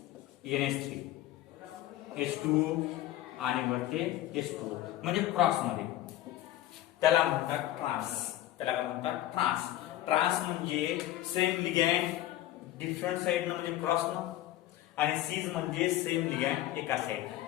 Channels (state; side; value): quieter; right; 14.1 dB